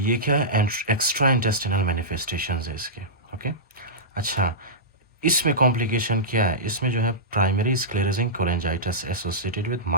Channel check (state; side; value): normal; both; correlation -0.16